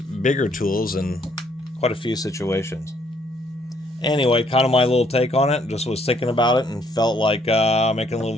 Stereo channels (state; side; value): normal; both; correlation 0.67